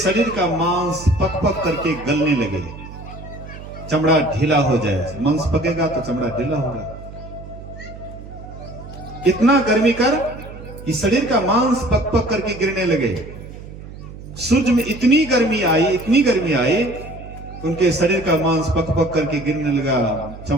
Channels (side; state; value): right; noise; hum, 14 dB below the sound